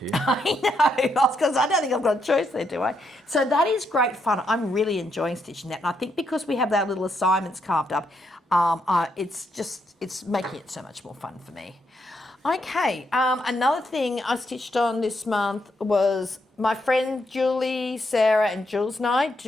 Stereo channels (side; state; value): both; normal; correlation 0.78